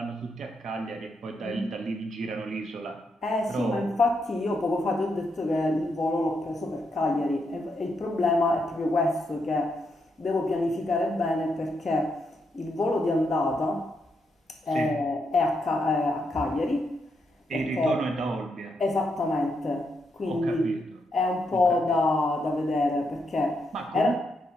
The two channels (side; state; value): both; normal; correlation 0.80